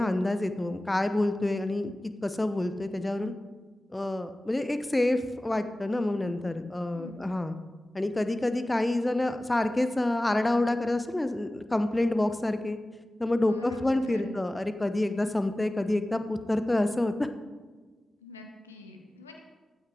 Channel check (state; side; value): normal; both; correlation 0.97